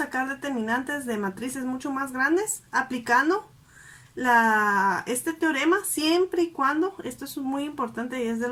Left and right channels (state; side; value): identical; both; correlation 1.00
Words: determinantes de matrices mucho más grandes aplicando este teorema siempre y cuando, esto es muy importante y es de